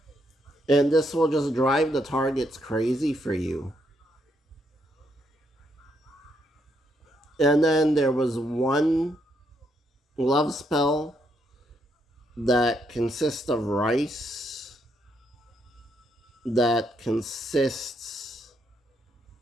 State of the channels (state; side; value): normal; both; correlation 0.76